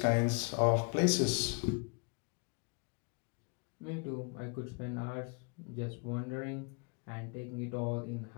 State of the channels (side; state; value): right; quieter; 35.6 dB